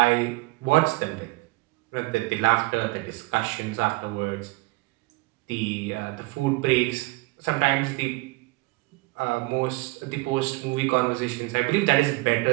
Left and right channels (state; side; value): quieter; left; 23.8 dB